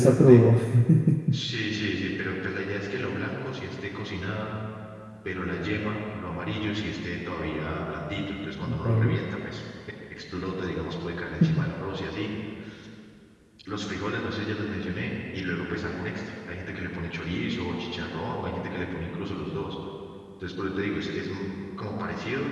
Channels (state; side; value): identical; both; correlation 1.00